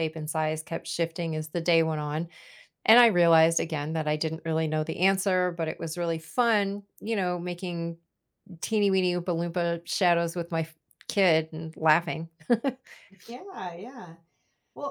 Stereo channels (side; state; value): both; identical; correlation 1.00